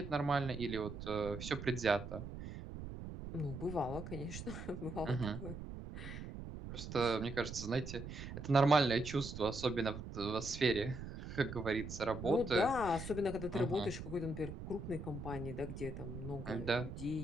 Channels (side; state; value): right; noise; rumble, 9 dB below the sound